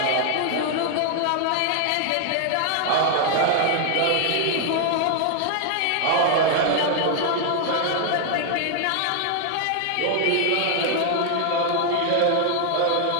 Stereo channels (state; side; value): different; both; correlation 0.00